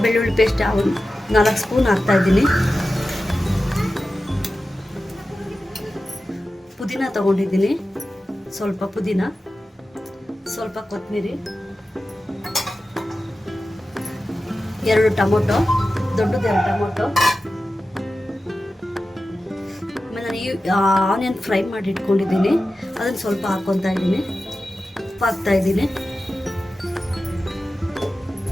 ಬೆಳ್ಳುಳ್ಳಿ ಪೇಸ್ಟ್ 4 ಸ್ಪೂನ್ ಹಾಕ್ತಾ ಇದ್ದೀನಿ. ಪುದೀನ ತಗೊಂಡಿದ್ದೀನಿ, ಸ್ವಲ್ಪ ಪುದೀನ, ಸ್ವಲ್ಪ ಕೊತ್ತಂಬರಿ, 2 ಟೊಮೊಟೊ, ದೊಡ್ಡದು 2 ಟೊಮೊಟೊ. ಆಮೇಲೆ ನಾನು ಆನಿಯನ್ ಫ್ರೈ ಮಾಡಿ ಇಟ್ಕೊಂಡಿದ್ದೀನಿ, ಅದನ್ನು ಸ್ವಲ್ಪ ಹಾಕ್ಕೊತಾ ಇದ್ದೀನಿ. ಉಪ್ಪು ಹಾಕ್ತಾ ಇದ್ದೀನಿ.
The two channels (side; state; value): both; normal; correlation 0.93